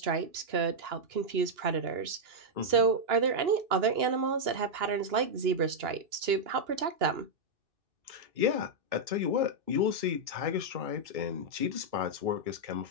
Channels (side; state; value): left; late; 2.9 ms